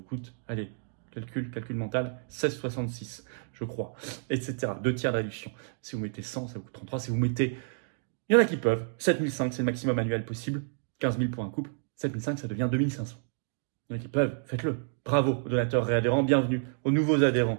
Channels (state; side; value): silent; left; digital silence